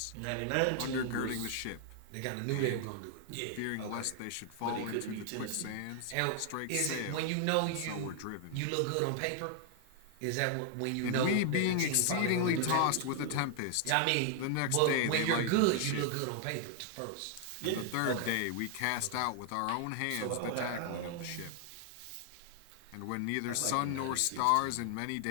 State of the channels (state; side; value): different; both; correlation 0.00